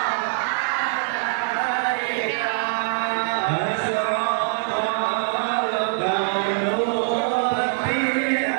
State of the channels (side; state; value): left; silent; 58 dB below the other